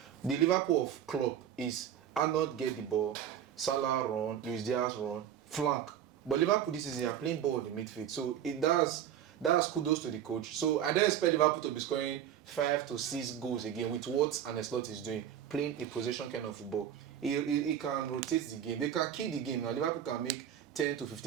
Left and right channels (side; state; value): left; quieter; 9.9 dB